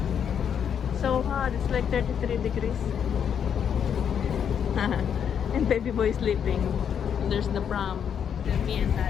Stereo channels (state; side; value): quieter; right; 8.1 dB